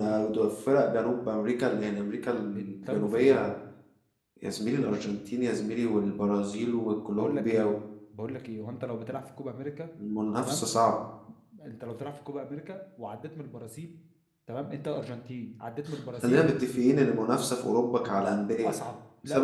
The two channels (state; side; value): identical; both; correlation 1.00